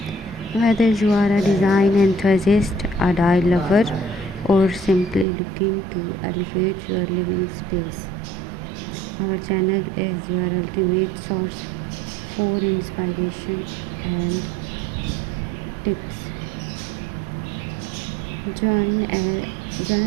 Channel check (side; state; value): left; drops out; at 5.2 s